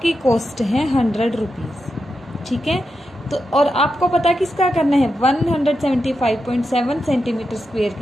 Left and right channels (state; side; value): normal; both; correlation 0.87